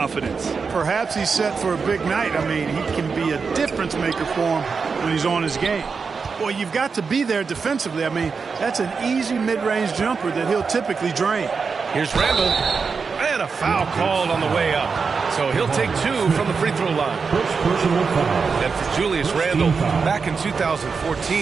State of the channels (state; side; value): quieter; left; 5.2 dB